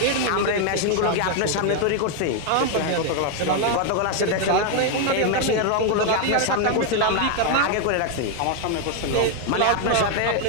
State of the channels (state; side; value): different; both; correlation 0.00